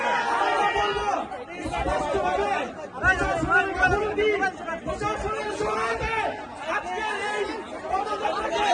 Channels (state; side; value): identical; both; correlation 1.00